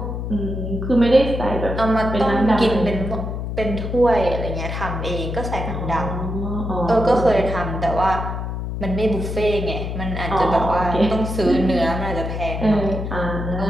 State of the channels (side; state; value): left; noise; hum, 4 dB below the sound